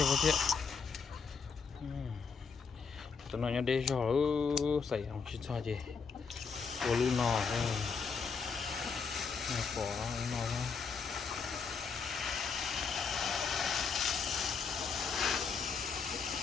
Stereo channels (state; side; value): quieter; right; 5.5 dB